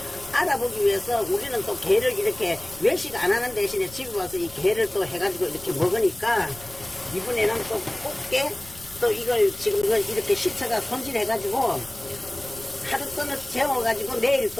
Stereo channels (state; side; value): noise; left; rumble, 19 dB below the sound